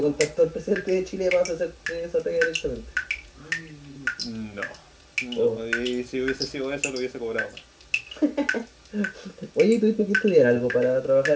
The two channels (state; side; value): identical; both; correlation 1.00